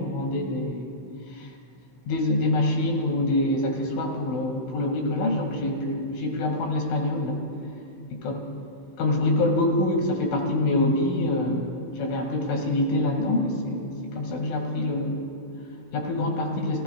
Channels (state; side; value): late; right; 16 ms